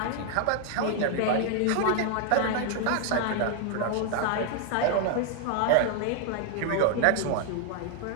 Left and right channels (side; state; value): both; different; correlation 0.00